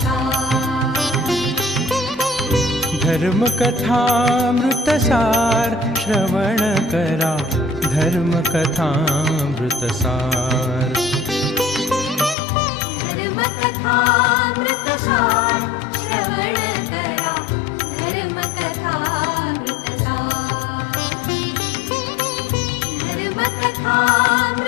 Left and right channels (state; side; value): drops out; right; at 12.4 s